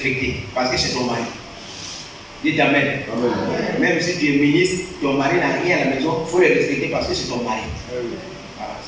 Parce que c'est ton mari. Dites amen. Amen. Même si tu es ministre, ton mari n'a rien à la maison, il faut le respecter parce que c'est ton mari. Voilà.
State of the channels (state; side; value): identical; both; correlation 1.00